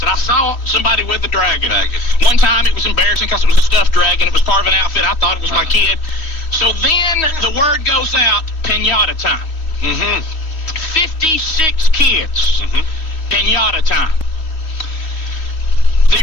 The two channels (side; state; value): right; late; 3.1 ms